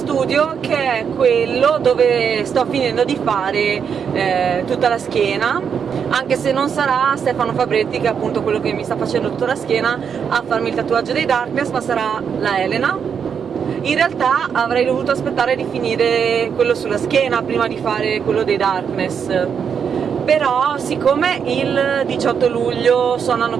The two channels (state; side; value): quieter; left; 7.1 dB